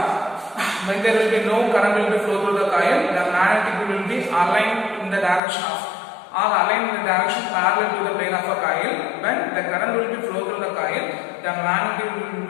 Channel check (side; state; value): right; drops out; at 5.4 s